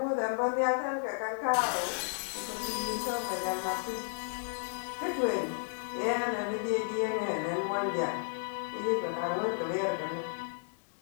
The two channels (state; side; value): silent; right; 56 dB below the other